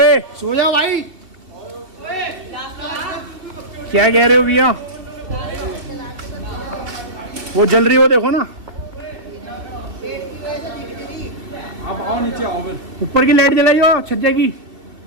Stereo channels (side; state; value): left; late; 2.6 ms